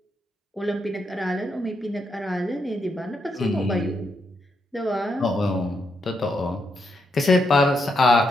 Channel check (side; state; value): both; normal; correlation 0.80